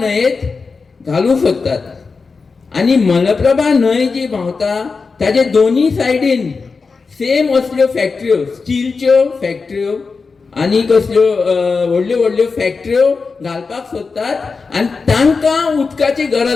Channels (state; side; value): quieter; right; 4.6 dB